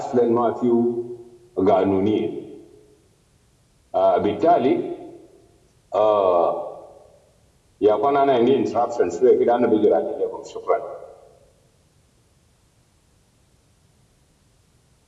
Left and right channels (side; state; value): both; identical; correlation 1.00